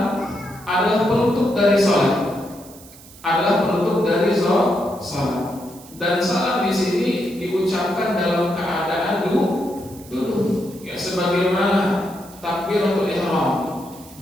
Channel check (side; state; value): right; noise; hiss, 21 dB below the sound